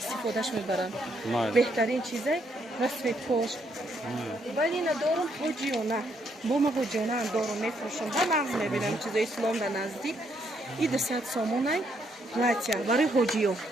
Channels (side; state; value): both; normal; correlation 0.73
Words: мебаранд беҳтарин чизай расветкош вале ина дорум ҳоҷиёна бо ма ҳоҷиёнаам дорум мефурӯшам ба нағз мебинам чизои ислом да наздик и 200 сомонай платья барои ҳоҷиё